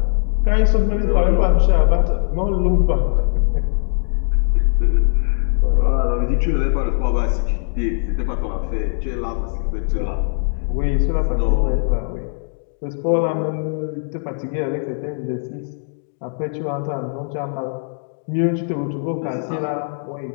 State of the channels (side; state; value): right; silent; digital silence